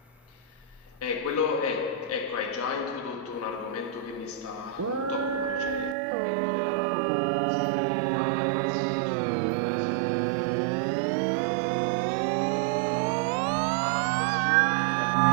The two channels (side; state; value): left; drops out; at 6.0 s